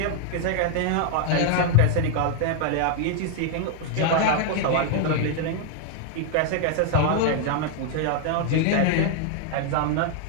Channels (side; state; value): both; different; correlation 0.00